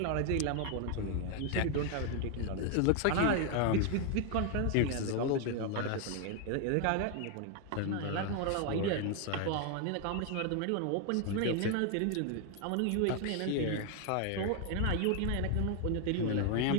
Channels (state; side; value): different; both; correlation 0.01